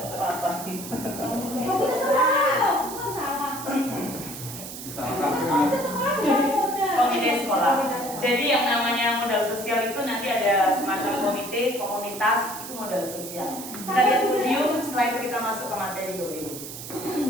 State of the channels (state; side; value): noise; right; hiss, 10 dB below the sound